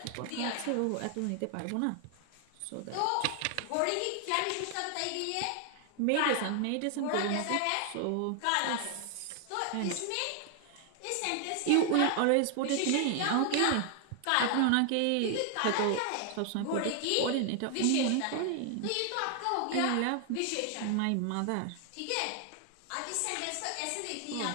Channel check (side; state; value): both; different; correlation 0.00